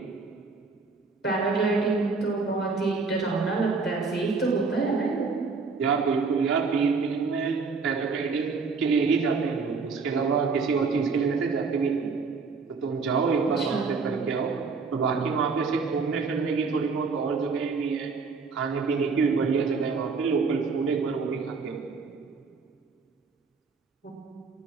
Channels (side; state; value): left; quieter; 4.6 dB